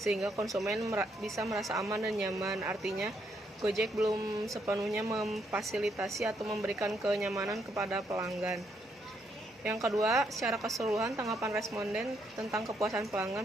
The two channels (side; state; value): both; normal; correlation 0.75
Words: konsumen bisa merasa aman dan nyaman. Artinya Gojek belum sepenuhnya memfasilitasi atau memberikan kenyamanan kepada pelanggan. Yang kedua, secara keseluruhan tanggapan responden tentang kepuasan